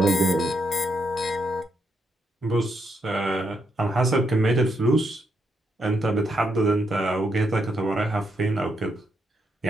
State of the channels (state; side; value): normal; both; correlation 0.79